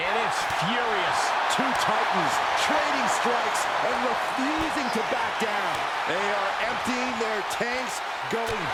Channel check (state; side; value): identical; both; correlation 1.00